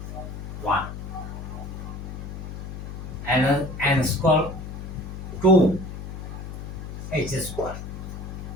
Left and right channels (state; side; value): noise; left; hum, 8 dB below the sound